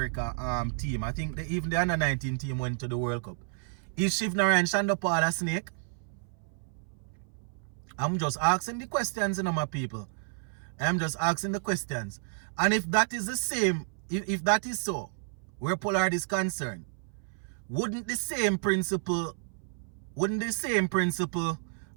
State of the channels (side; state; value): left; silent; 57 dB below the other